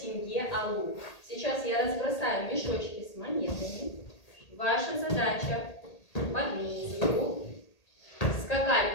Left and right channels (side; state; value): right; late; 1.8 ms